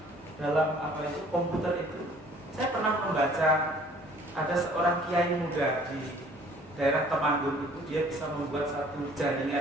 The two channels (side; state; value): both; normal; correlation 0.55